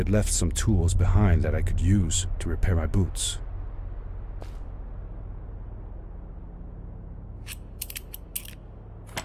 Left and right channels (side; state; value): both; identical; correlation 1.00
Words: left some tools behind that I could use to repair my boots.